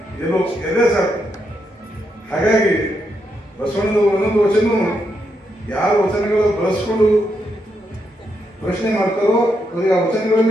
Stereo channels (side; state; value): both; normal; correlation 0.80